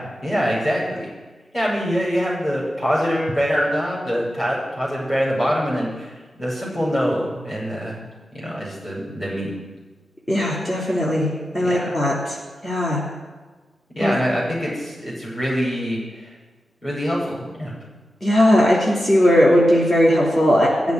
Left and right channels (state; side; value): normal; both; correlation 0.91